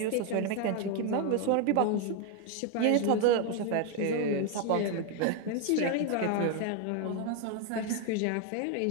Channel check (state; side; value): different; both; correlation 0.01